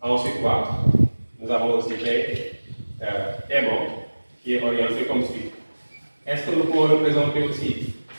quoi? Nous avons aussi B aimant, qui est orienté comme suit. Est-ce que nous pouvons représenter aussi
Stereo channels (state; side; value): inverted; both; correlation -1.00